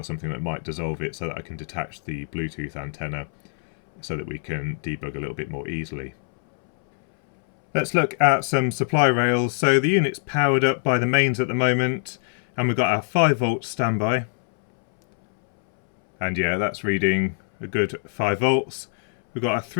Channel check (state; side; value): silent; right; 63 dB below the other